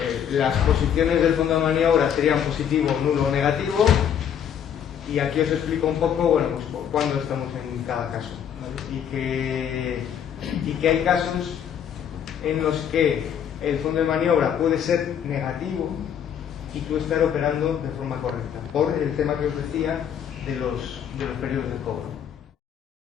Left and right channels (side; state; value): right; quieter; 8.8 dB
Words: las posiciones del fondo de maniobra serían positivo, nulo o negativo, y aquí os explico un poco, bueno, pues cuándo estamos en cada caso, ¿vale? y que hay casos en los que el fondo de maniobra puede ser negativo y tú estar operando de forma correcta, por el tema que os decía de los periodos de cobro.